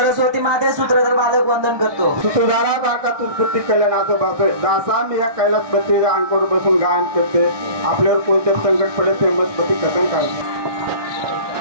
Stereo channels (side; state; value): left; late; 1.2 ms